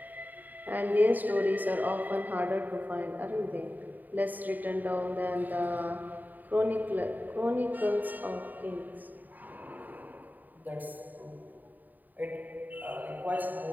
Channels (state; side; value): late; left; 0.086 ms